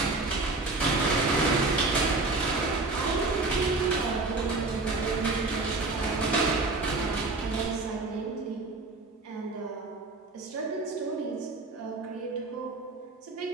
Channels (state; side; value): quieter; left; 3.4 dB